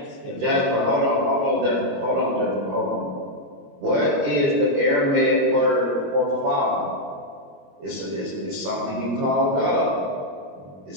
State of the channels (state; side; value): late; left; 21 ms